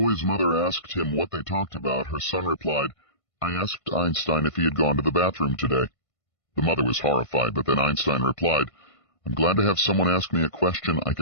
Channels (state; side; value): late; right; 1.5 ms